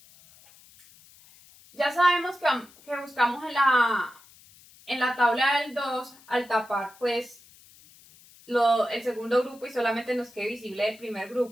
ya sabemos que buscamos en la tabla del 2, al tapar pues el segundo grupo y solamente nos quede visible el primer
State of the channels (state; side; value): noise; left; hiss, 25 dB below the sound